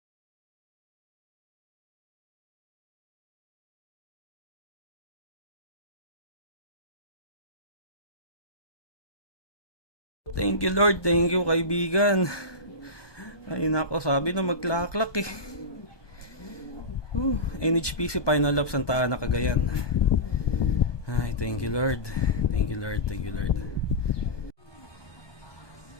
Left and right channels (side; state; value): right; late; 1.2 ms